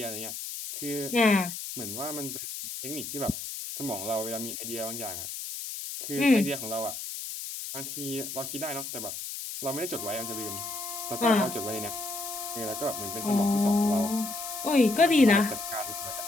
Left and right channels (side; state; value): left; noise; hiss, 7 dB below the sound